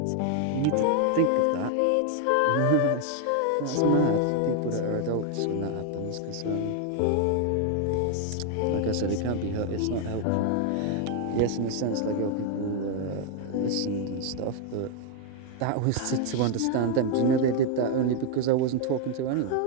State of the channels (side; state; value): both; different; correlation 0.01